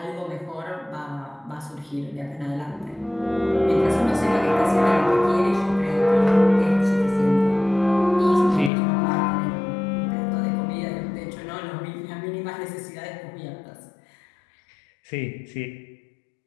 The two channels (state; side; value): drops out; right; at 8.7 s